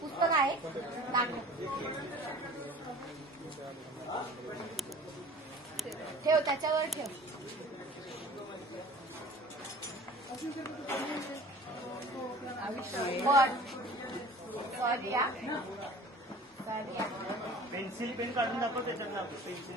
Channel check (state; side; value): normal; both; correlation 0.45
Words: पुस्तक आहे दाखव. ठेव त्याच्यावर ठेव. पेन्सिल पेन काढून दाखव त्याच्यात दाखव. पेन्सिल